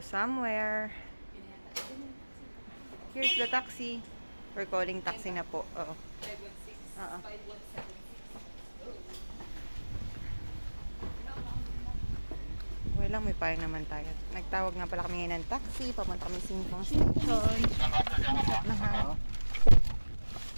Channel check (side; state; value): both; inverted; correlation -1.00